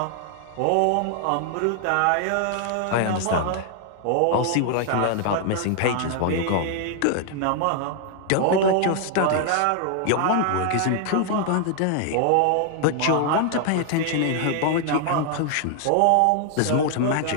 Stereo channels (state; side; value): different; both; correlation 0.00